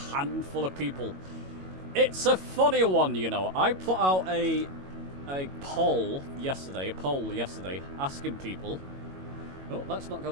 of people. It's a funny one, you know. I put out a poll yesterday, asking people... Oh, let's not go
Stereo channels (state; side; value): late; left; 22 ms